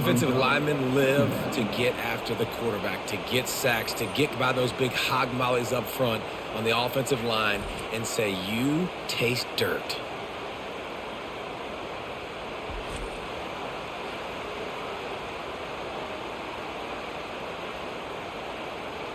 linemen live to get after the quarterback, to get sacks, to get by those big hog mollies up front on the offensive line and say, you taste dirt.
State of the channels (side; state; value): both; identical; correlation 1.00